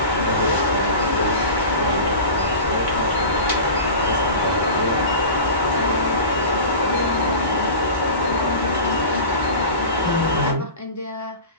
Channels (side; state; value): both; inverted; correlation -0.34